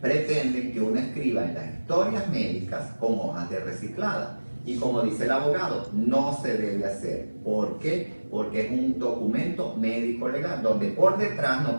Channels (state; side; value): inverted; both; correlation -1.00